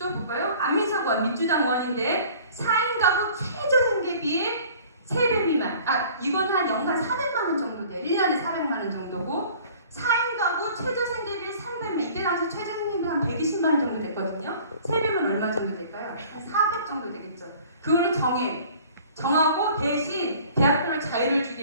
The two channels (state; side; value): inverted; both; correlation -0.49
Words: 볼까요? 안민석 의원 민주당 의원인데 4인 가구 최저생계비의 3배 미만. 이건 한 연간 400만 원 정도 돼. 1년에 400만 원 정도고 4인 가구 최저생계비 3배면 이때 당시 최저생계비 한 120만 원 정도 됐거든요. 3배면 얼마 정도 될까요? 한 400 정도 되겠죠. 그거를 정하고 대신 대학교를 자유를 주기